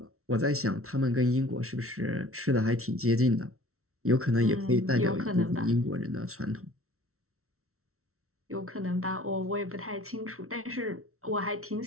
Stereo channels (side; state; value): left; late; 0.63 ms